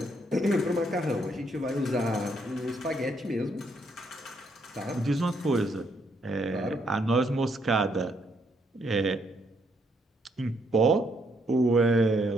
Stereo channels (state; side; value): normal; both; correlation 0.73